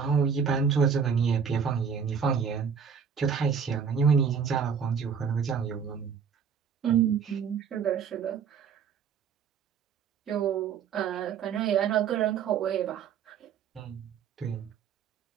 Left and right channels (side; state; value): left; quieter; 6.8 dB